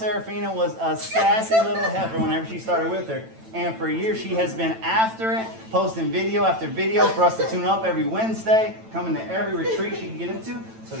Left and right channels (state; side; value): late; left; 9.0 ms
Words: was a sassy little heifer whenever she started with her. And for years she has been after it, posting video after video for us to tune up every Wednesday, coming to every retreat she can get into. So